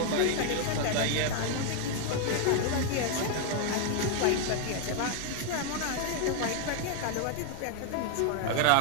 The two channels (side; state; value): both; different; correlation 0.00